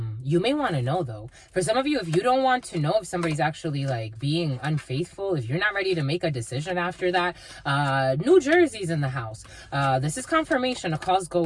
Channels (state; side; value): identical; both; correlation 1.00